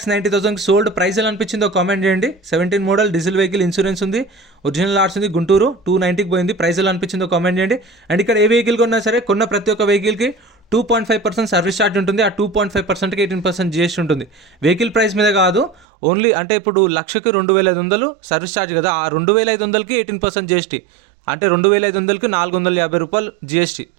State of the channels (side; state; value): left; drops out; at 15.9 s